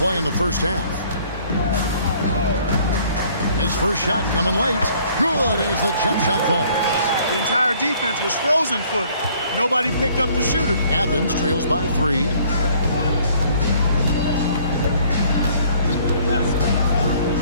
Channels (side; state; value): both; inverted; correlation -0.58